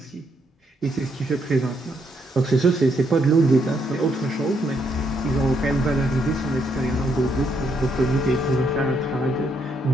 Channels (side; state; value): both; normal; correlation 0.75